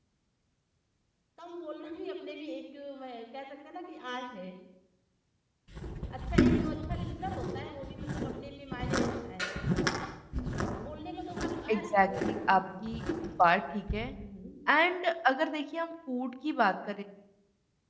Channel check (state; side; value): identical; both; correlation 1.00